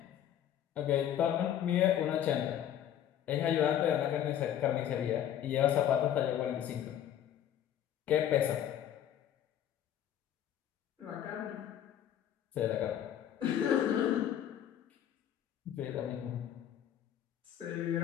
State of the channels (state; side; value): quieter; right; 10.6 dB